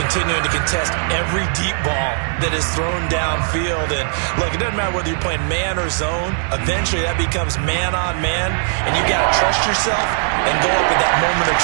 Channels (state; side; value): silent; left; 67 dB below the other